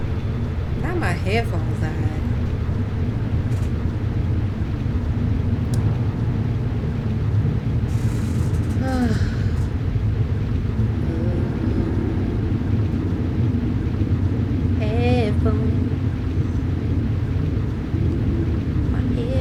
Now my headphones died. Headphones. My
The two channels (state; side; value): identical; both; correlation 1.00